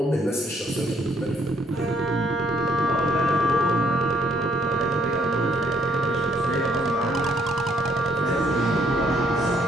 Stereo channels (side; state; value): both; normal; correlation 0.67